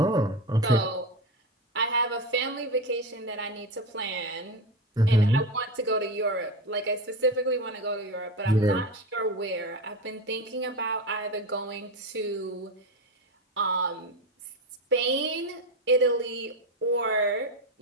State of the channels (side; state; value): both; normal; correlation 0.19